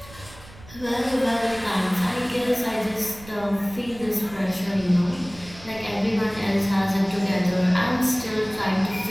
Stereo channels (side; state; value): right; noise; rumble, 20 dB below the sound